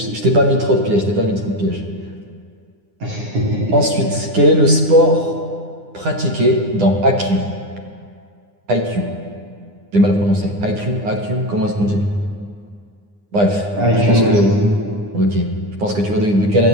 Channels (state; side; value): late; left; 9.8 ms